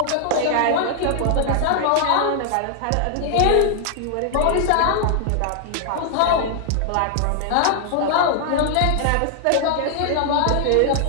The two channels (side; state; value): both; different; correlation -0.01